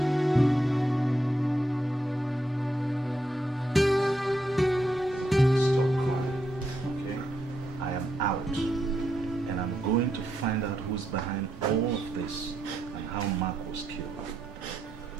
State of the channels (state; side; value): normal; both; correlation 0.80